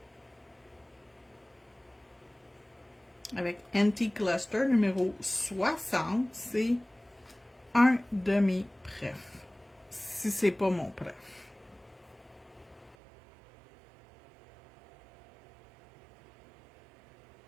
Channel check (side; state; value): left; drops out; at 13.0 s